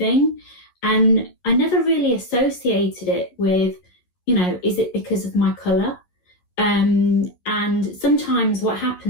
and I never really associated it with, is it because of my colour? And sometimes what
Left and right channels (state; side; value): late; right; 11 ms